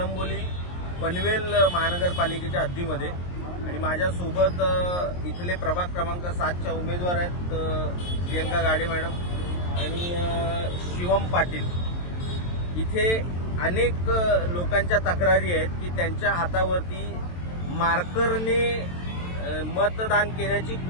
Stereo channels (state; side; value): late; right; 23 ms